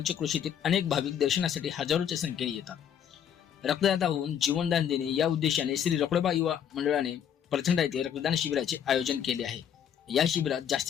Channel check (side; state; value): right; quieter; 8.9 dB